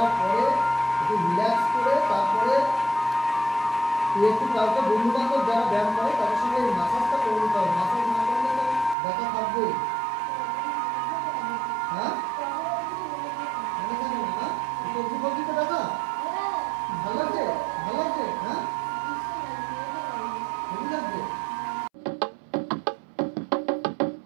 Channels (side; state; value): left; drops out; at 9.0 s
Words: পরে একটু রিল্যাক্স করে তারপরে তুই একটু কাউকে বন্ধু বান্ধব যারা ব্যায়াম করে তাদের সঙ্গে মাসাজটা করে দিতে হবে। মাসাজ না করলে তো ব্যথা থাকবে। হ্যাঁ মনে থাকে না? সবজি ফবজিতে ব্যথা ভালো লাগছে? ভালো লাগছে? হ্যাঁ হেভি লাগছে।